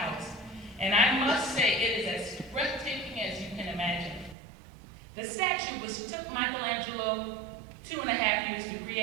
and I must say it is as breathtaking as you can imagine. The statue, which took Michelangelo 2.5 years to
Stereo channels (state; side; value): drops out; left; at 4.4 s